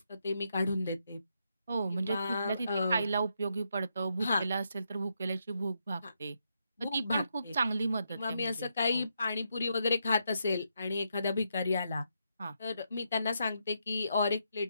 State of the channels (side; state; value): both; inverted; correlation -0.80